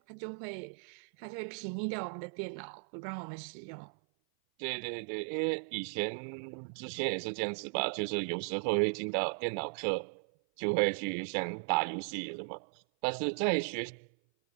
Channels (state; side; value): silent; left; 54 dB below the other